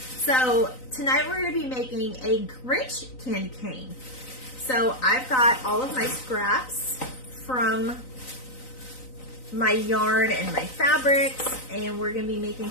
So tonight we're going to be making a Grich candy cane. So I've got all of my scraps from my yarn and my fabrics, and we're going to be making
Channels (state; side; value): late; right; 3.9 ms